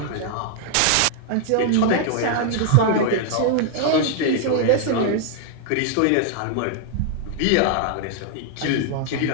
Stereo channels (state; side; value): different; both; correlation 0.00